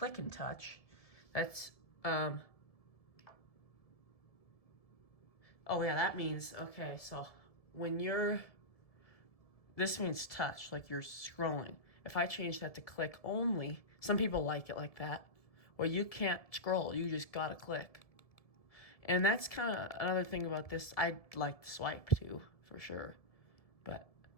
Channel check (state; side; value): late; right; 1.7 ms